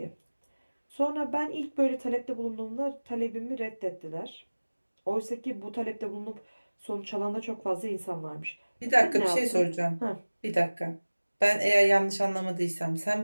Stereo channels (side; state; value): both; inverted; correlation -1.00